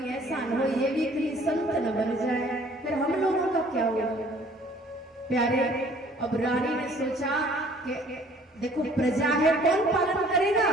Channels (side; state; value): both; normal; correlation 0.55